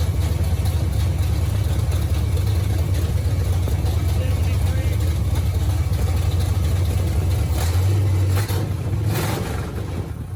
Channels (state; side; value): identical; both; correlation 1.00